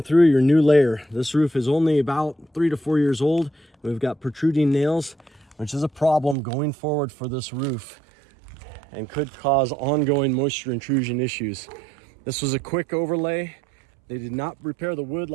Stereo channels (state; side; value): drops out; left; at 6.4 s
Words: through your new layer. This roof is only about 3 to 4 years old. We've got protruding nails, which is a problem going forward for this roof and could cause ongoing moisture intrusion issues. This was a quick overlay. They did not repair the wood